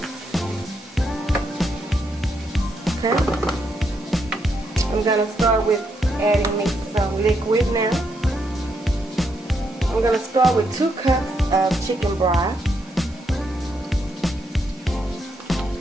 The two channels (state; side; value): normal; both; correlation 0.78